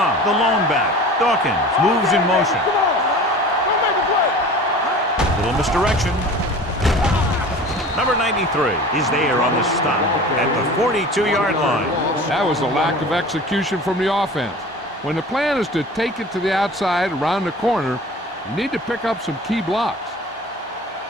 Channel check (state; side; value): normal; both; correlation 0.40